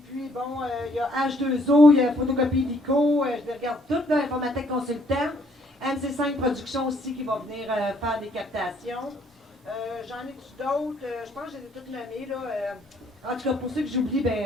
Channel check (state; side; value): normal; both; correlation 0.66